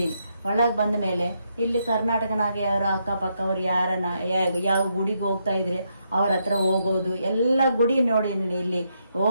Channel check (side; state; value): both; inverted; correlation -0.79